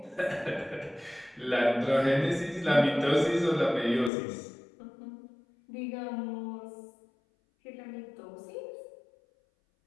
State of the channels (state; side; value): drops out; right; at 4.1 s